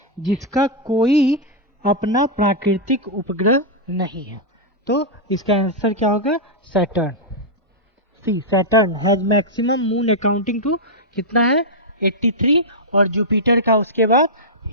जिसका कोई अपना प्राकृतिक उपग्रह नहीं है। तो इसका आंसर क्या होगा, Saturn. C, Saturn has maximum moon accounting to कितना है 83, और जुपिटर का उसके बाद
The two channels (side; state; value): both; normal; correlation -0.07